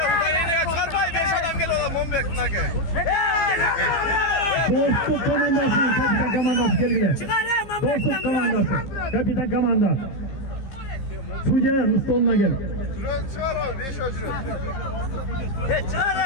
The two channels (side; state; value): right; late; 15 ms